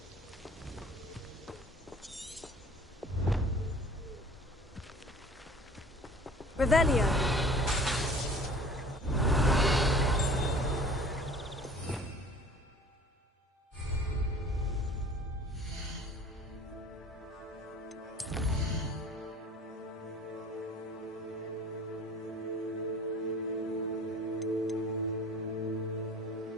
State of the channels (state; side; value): normal; both; correlation 0.47